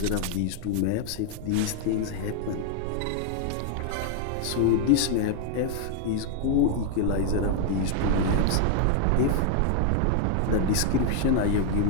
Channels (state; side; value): different; both; correlation 0.00